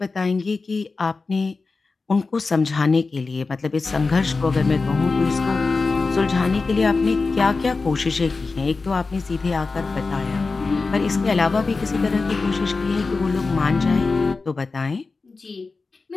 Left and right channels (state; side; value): quieter; right; 4.0 dB